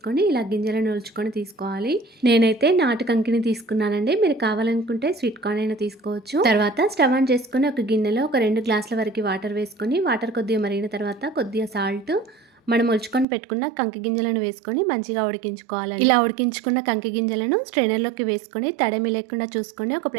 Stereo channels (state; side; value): drops out; left; at 13.2 s